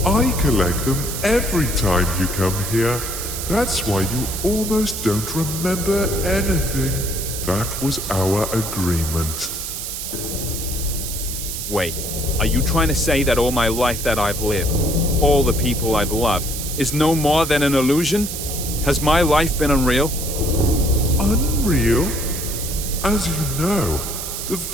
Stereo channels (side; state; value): right; noise; hiss, 6 dB below the sound